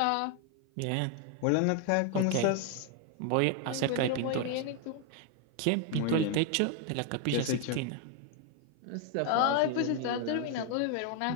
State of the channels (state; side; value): different; both; correlation 0.01